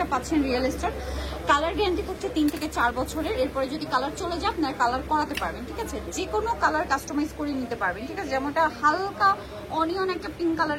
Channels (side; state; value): both; identical; correlation 1.00